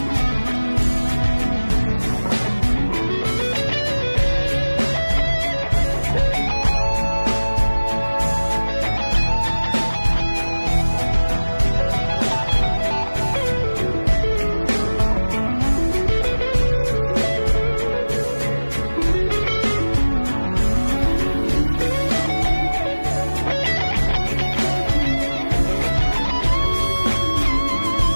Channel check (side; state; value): both; inverted; correlation -1.00